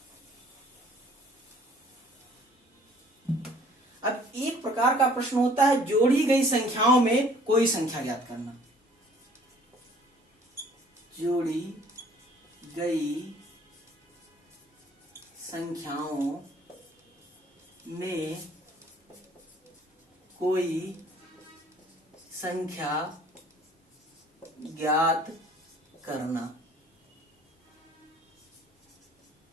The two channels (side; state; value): both; normal; correlation 0.55